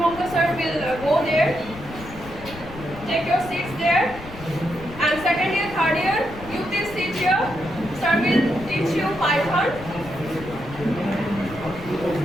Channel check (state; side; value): noise; left; rumble, 15 dB below the sound